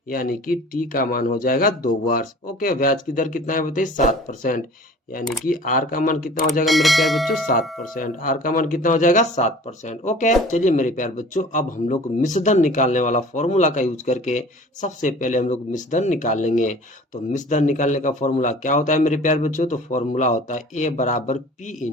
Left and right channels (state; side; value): normal; both; correlation 0.45